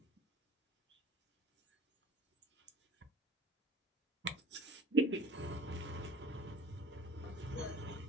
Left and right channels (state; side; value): normal; both; correlation 0.46